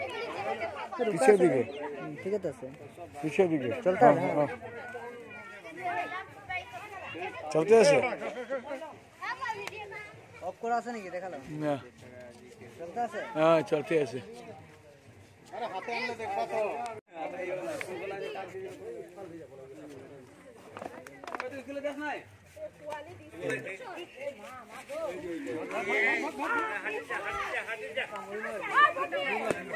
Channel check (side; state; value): both; identical; correlation 1.00